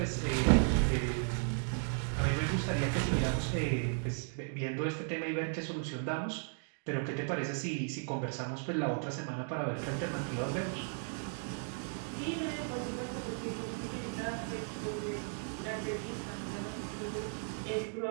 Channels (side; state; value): left; silent; 54 dB below the other